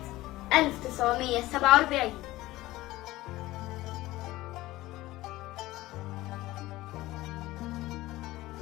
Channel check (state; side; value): quieter; right; 17.6 dB